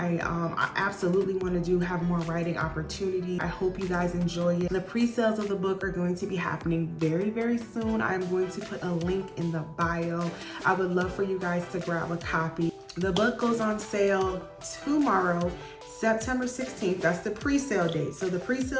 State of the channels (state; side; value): identical; both; correlation 1.00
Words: absolutely want to have more writing opportunity. I hope you guys enjoy it. The pre-sales of the book are going to be happening very, very soon. I'm going to put a link in the bio. I would love for you guys to grab a copy. The book goes on sale tomorrow, September 16th. That's the pre-sale date. So the